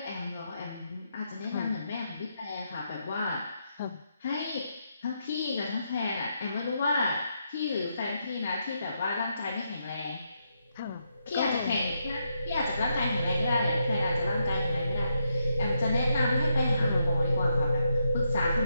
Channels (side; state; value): both; inverted; correlation -0.81